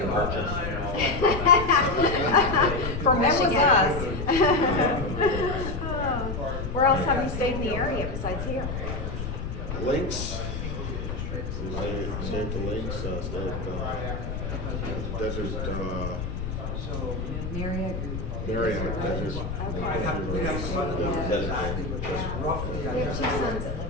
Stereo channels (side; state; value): left; noise; rumble, 4 dB below the sound